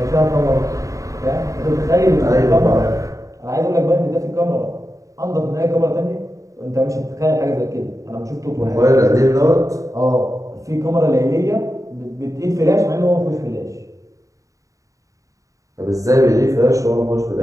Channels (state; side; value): late; left; 0.16 ms